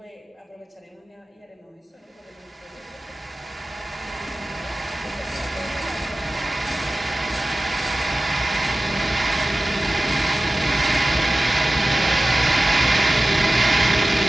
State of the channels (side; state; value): both; normal; correlation 0.96